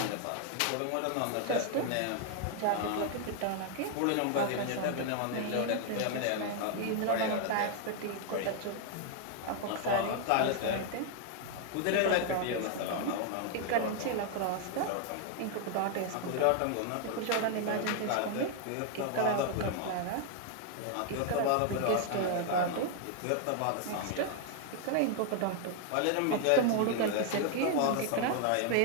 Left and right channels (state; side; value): different; both; correlation 0.00